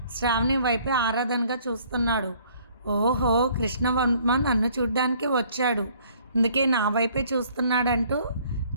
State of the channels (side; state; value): both; inverted; correlation -0.60